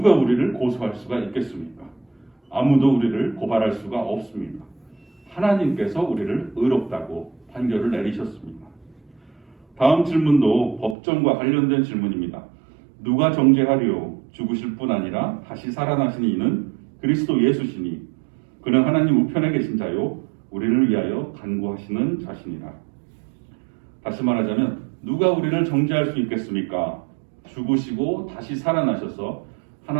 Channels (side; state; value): left; drops out; at 11.0 s